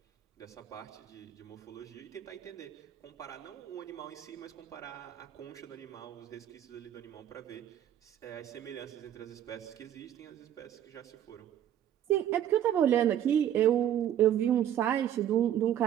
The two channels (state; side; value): quieter; left; 10.8 dB